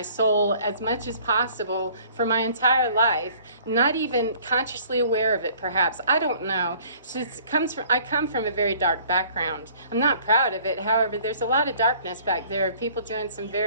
soul as much as possible for my entire life, not even consciously aware of it, perhaps. I don't know. So I come from a very dark background. I'm not proud of it. However, there's a lot of darkness back there, people doing some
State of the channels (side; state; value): both; inverted; correlation -0.54